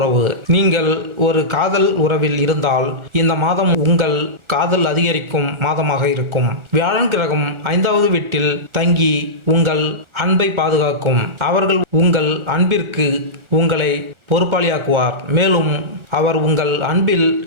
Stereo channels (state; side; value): late; left; 1.4 ms